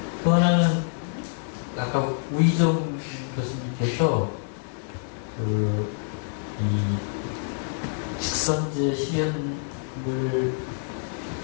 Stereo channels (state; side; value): silent; right; digital silence